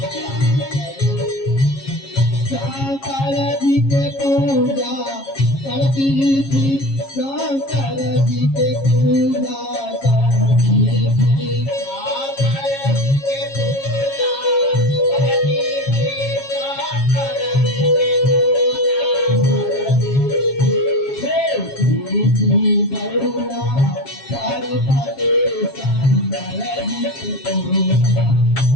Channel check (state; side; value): late; right; 7.4 ms